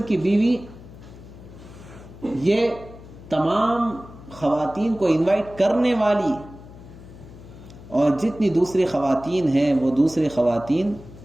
کی بیوی یہ تمام خواتین کو انوائٹ کرنے والی، اور جتنی دوسری خواتین ہیں وہ دوسری خواتین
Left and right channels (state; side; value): noise; left; hum, 18 dB below the sound